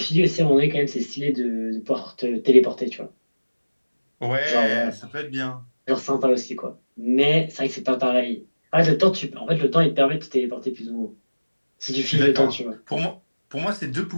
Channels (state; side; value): inverted; both; correlation -1.00